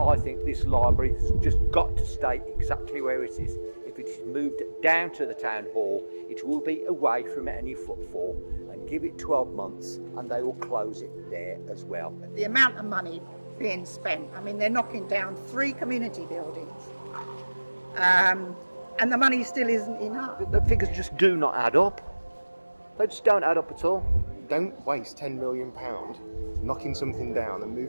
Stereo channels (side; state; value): both; inverted; correlation -1.00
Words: think this library has just got to stay exactly where it is. If it is moved down to the town hall, it will be away from any footfall, and give it 12 months and they will close it there as well. The amount of money being spent, I mean, they're knocking down 3 community buildings, and the money still isn't enough. The figures just do not add up. They just don't add up at all. Don't waste £10 million knocking something down and